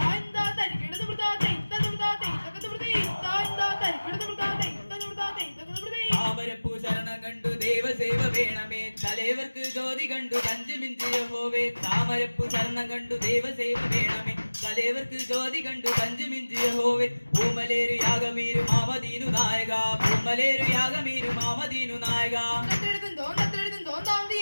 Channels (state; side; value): inverted; both; correlation -1.00